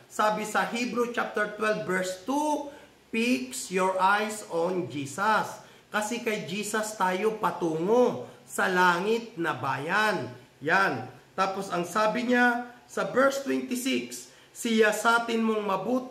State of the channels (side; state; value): both; identical; correlation 1.00